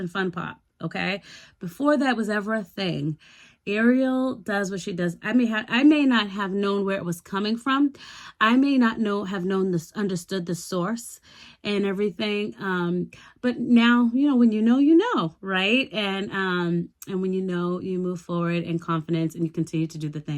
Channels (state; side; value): identical; both; correlation 1.00